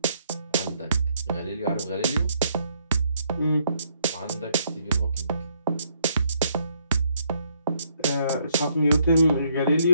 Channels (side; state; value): both; inverted; correlation -0.71